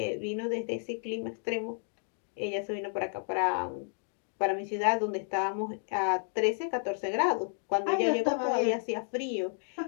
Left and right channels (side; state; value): right; silent; digital silence